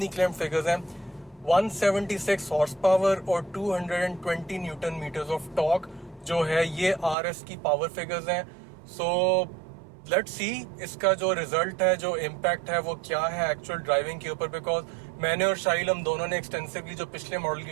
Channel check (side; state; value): left; drops out; at 7.2 s